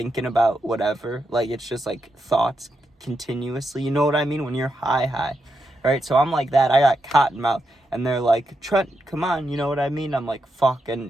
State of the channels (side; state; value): both; normal; correlation 0.84